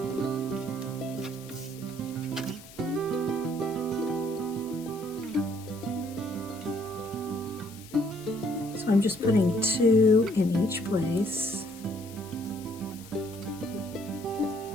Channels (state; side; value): noise; left; hiss, 19 dB below the sound